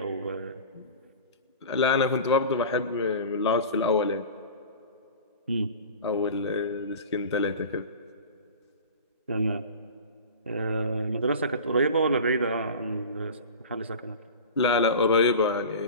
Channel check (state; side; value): inverted; both; correlation -0.35